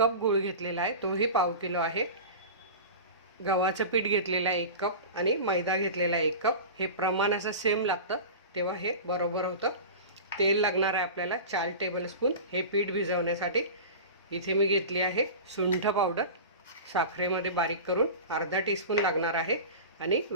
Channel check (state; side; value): inverted; both; correlation -0.32